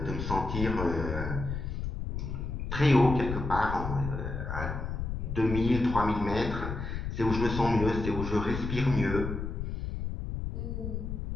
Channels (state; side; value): noise; left; rumble, 4 dB below the sound